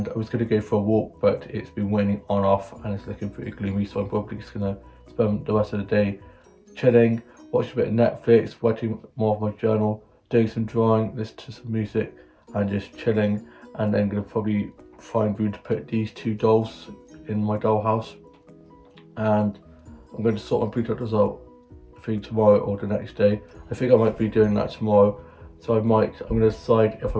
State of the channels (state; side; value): identical; both; correlation 1.00